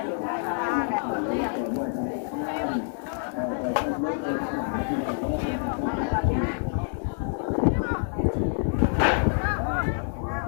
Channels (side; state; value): right; silent; 59 dB below the other